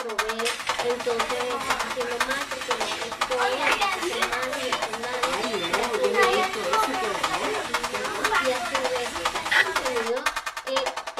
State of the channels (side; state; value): both; identical; correlation 1.00